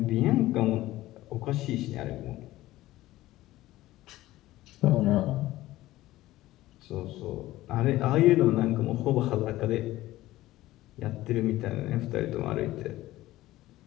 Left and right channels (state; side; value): quieter; right; 16.4 dB